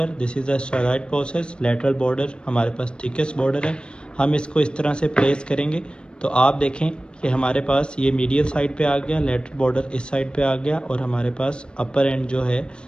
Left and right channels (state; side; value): late; right; 0.054 ms